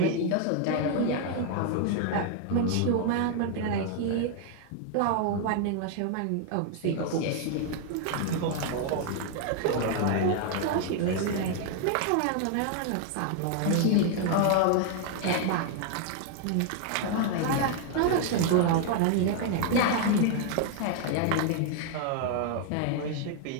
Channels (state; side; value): different; both; correlation 0.00